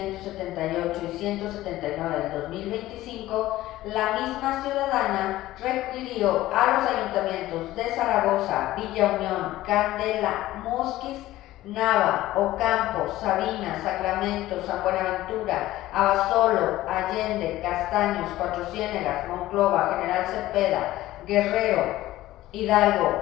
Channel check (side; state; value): right; quieter; 15.9 dB